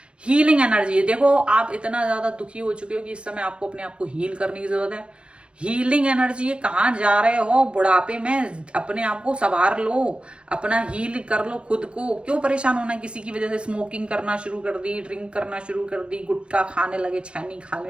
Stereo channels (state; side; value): late; left; 0.058 ms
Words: Healing energy, देखो आप इतना ज्यादा दुखी हो चुके हो कि इस समय आपको अपने आप को हील करने की जरूरत है। हीलिंग एनर्जी है, कहाँ जा रहे हो बुढ़ापे में, अपने आप को संवार लो, अपना हील कर लो खुद को। क्यों परेशान होना किसी की वजह से? स्मोकिंग करना शुरू कर दी, ड्रिंक करना शुरू कर दी, गुटखा खाने लगे, छैनी